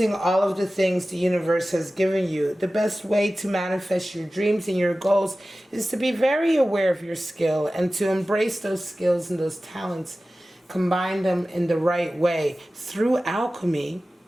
all of the things the universe has given you. The best way to manifest your dreams and your goals is to be very aware of your skill and to embrace those skills and those talents, combine them in the right way through alchemy,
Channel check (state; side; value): normal; both; correlation 0.96